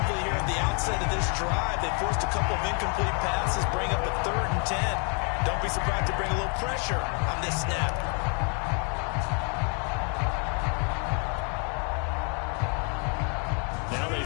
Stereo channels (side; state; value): right; quieter; 38.4 dB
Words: here at the outset of this drive. They forced a couple of incomplete passes, bring up a 3rd and 10. Don't be surprised to bring a little pressure on this snap. Now they